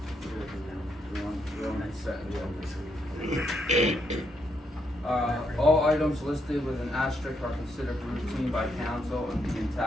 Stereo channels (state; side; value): normal; both; correlation 0.77